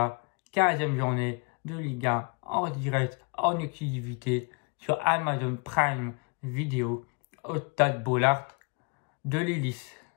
15e journée de Ligue 1 en direct, en exclusivité sur Amazon Prime Video au stade Bollaert de l'Hélice.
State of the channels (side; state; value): right; quieter; 34.0 dB